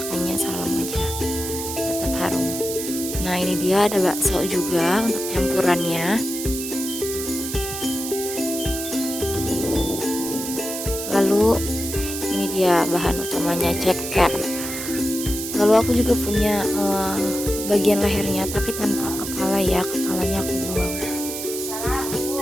salam aja, tetap harum. Nah, ini dia, ada bakso juga untuk campurannya. Lalu ini dia bahan utamanya, ceker. Lalu aku juga punya bagian lehernya tapi tanpa kepala ya, kepalanya aku buang.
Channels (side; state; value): right; noise; hiss, 6 dB below the sound